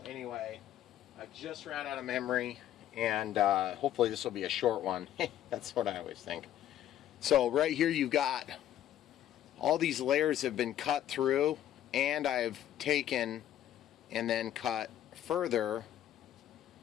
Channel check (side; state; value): right; quieter; 11.7 dB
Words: anyway, I just ran out of memory, and hopefully this will be a short one. That's what I always think. So right here you've got all these layers have been cut through, and I've taken and then cut further